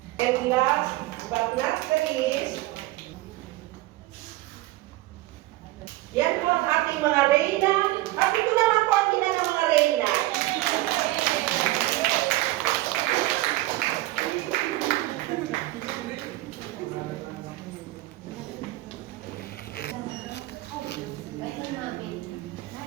And last but not the least, yan po ang ating mga reyna. At ito naman po ang ina ng mga reyna.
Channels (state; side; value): quieter; left; 18.3 dB